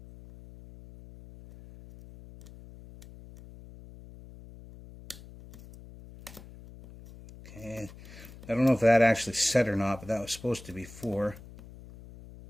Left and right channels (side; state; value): left; noise; hum, 18 dB below the sound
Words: Okay, I don't know if that actually set or not, but that was supposed to be 4.